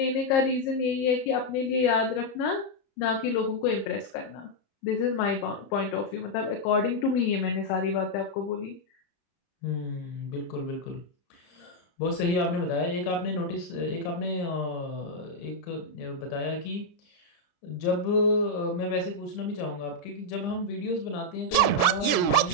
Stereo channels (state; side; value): late; right; 30 ms